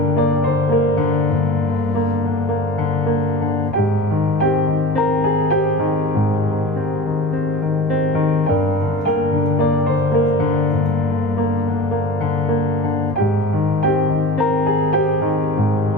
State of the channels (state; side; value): normal; both; correlation 0.35